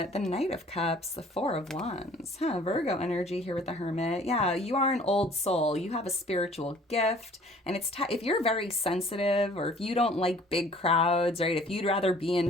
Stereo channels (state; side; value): normal; both; correlation 0.53